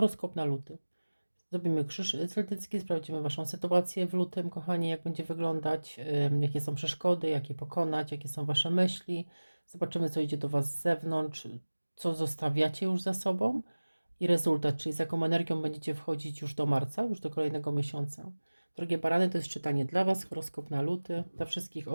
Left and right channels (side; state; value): both; inverted; correlation -1.00